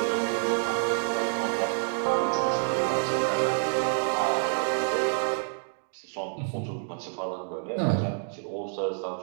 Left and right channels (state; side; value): silent; left; digital silence